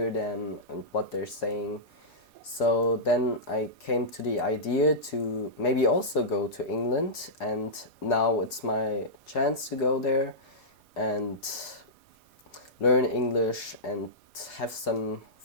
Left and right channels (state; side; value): normal; both; correlation -0.14